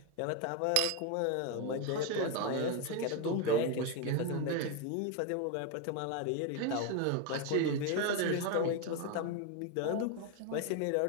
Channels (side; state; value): both; different; correlation 0.02